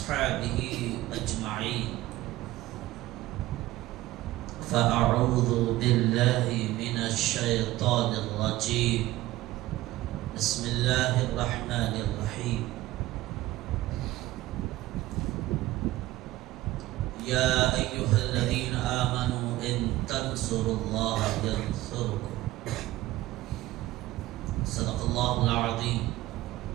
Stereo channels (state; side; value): quieter; left; 17.0 dB